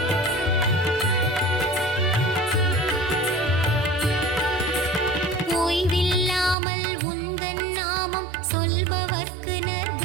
ஓய்வில்லாமல் உந்தன் நாமம் சொல்பவர்க்கு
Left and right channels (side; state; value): left; drops out; at 6.6 s